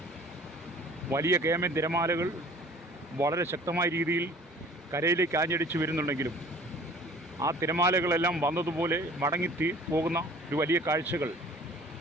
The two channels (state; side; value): normal; both; correlation 0.49